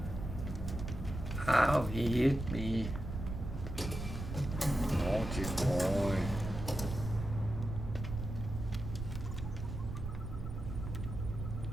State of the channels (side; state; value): right; noise; rumble, 6 dB below the sound